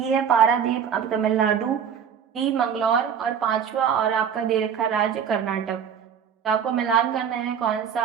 है पारादीप, अब तमिलनाडु, डी मंगलौर और पांचवा और आपका दे रखा राज्य कर्नाटक। तो आपको मिलान करना है कौन सा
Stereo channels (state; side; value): quieter; left; 7.7 dB